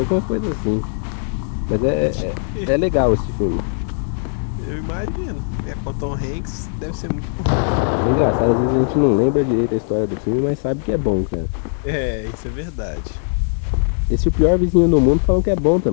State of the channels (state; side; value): silent; right; digital silence